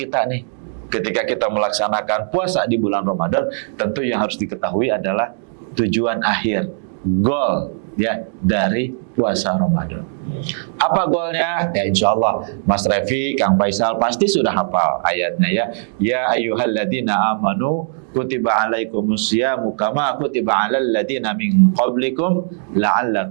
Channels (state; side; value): silent; left; digital silence